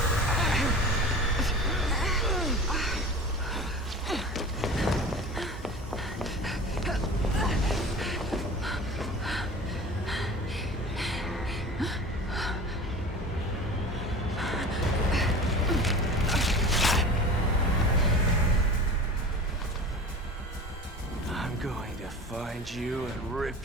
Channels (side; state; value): both; normal; correlation 0.36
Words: Find you and